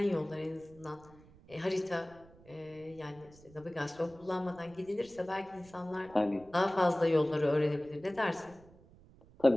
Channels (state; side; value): noise; right; rumble, 24 dB below the sound